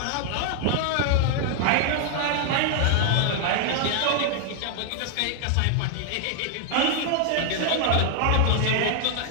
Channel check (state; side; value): different; both; correlation 0.00